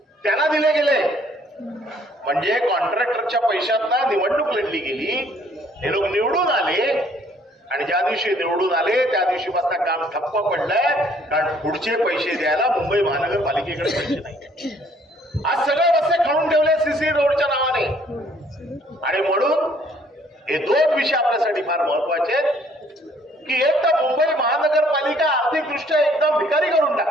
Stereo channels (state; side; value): normal; both; correlation 0.61